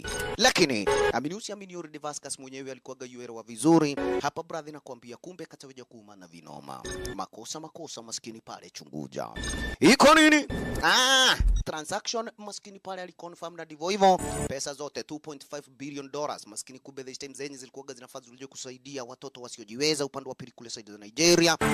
Lakini amini already Vasquez mwenyewe alikuwa gayuelewa vizuri. Hapa brother nakwambia kumbe kataweja kuumana vino. Makosa maskini pale chunguja. Iko nini? Transaction maskini pale aliconfirm na divo hivyo. Pesa zote $2.5 billion maskini kumbe this time zenye zilikuwa zinafaa zilije kusaidia watoto wasiojiweza upande wa pili kule side za Nigeria.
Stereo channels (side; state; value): both; identical; correlation 1.00